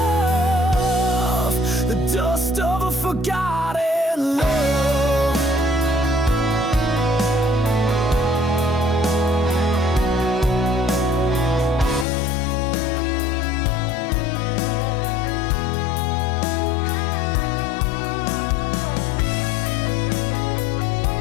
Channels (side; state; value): right; drops out; at 12.1 s